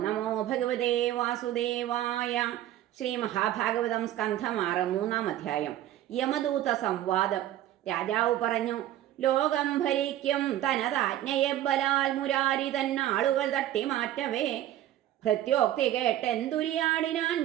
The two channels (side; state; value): left; quieter; 13.0 dB